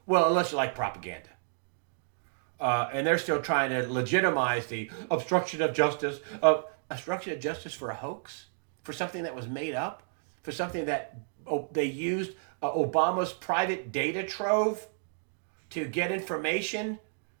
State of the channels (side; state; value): left; silent; digital silence